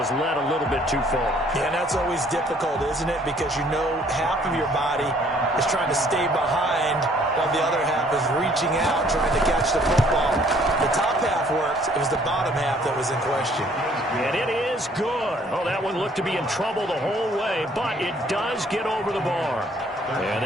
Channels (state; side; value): normal; both; correlation 0.60